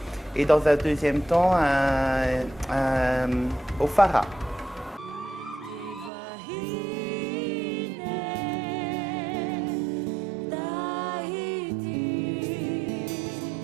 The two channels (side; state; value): left; drops out; at 6.1 s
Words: et dans un deuxième temps, au Fara.